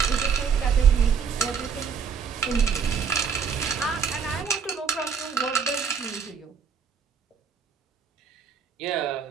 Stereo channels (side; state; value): left; quieter; 6.3 dB